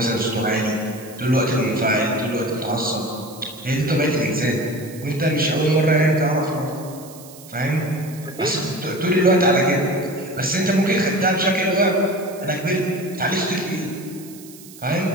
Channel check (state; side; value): noise; right; hiss, 19 dB below the sound